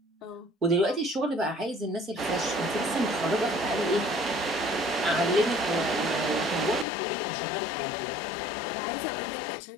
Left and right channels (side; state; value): right; drops out; at 6.9 s